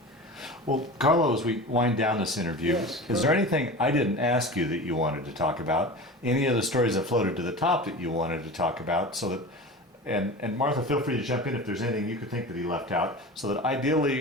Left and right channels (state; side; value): normal; both; correlation 0.32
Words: Well, Carlo, as we wind down this interview, Yes, is there anything I didn't ask you that you wanted to talk about? Any of the stories that floated to the top that you wanted to talk about, so that, and Martha, feel free to jump in if there's anything you could think that he left out, so that